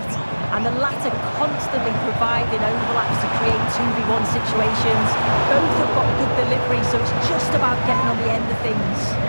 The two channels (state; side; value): inverted; both; correlation -1.00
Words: and the latter constantly providing overlaps to create 2v1 situations. Both have got good delivery, so it's just about getting on the end of things.